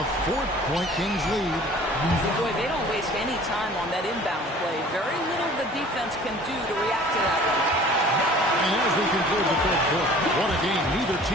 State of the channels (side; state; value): both; normal; correlation 0.48